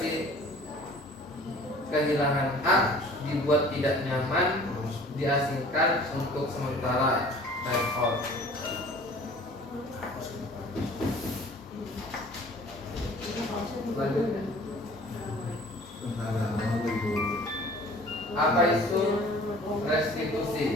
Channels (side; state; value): both; normal; correlation 0.49